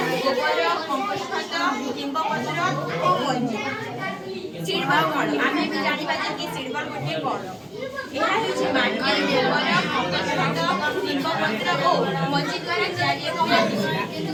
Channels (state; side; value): identical; both; correlation 1.00